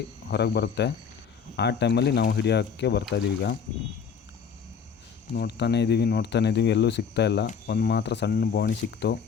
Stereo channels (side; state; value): right; quieter; 6.6 dB